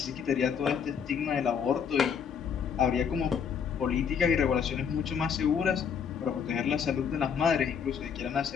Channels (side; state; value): right; quieter; 7.0 dB